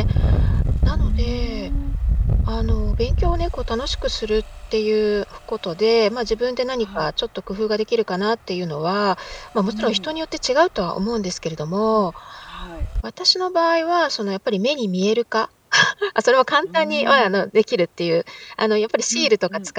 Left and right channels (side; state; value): both; identical; correlation 1.00